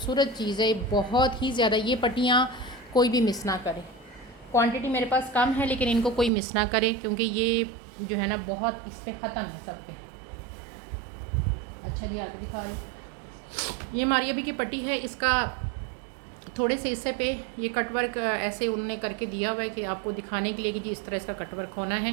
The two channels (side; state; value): left; drops out; at 6.3 s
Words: चीज़ है, बहुत ही ज़्यादा। ये पट्टियाँ कोई भी मिस ना करे। क्वांटिटी मेरे पास कम है लेकिन इनको कोई मिस ना करे, क्योंकि ये जो है ना बहुत इस पर ख़त्म है सब पे। अच्छा जी, आगे दिखा रही। ये मारिया बी की पट्टी है। इसका थोड़े से हिस्से पे ये कटवर्क ऐसे उन्होंने करके दिया हुआ है कि आपको दिखाने के लिए कि जी इस तरह इसका कटवर्क होना